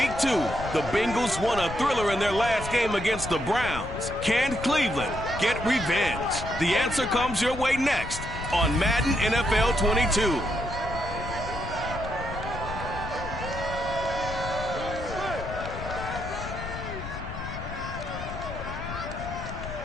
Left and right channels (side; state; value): left; noise; rumble, 9 dB below the sound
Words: 2, the Bengals won a thriller in their last game against the Browns. Can Cleveland get revenge? The answer comes your way next on Madden NFL 22.